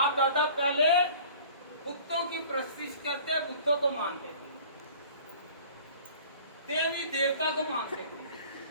दादा पहले बुतों की प्रस्तिश करते, बुतों को मानते थे, देवी देवता को मानते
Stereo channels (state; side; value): inverted; both; correlation -0.47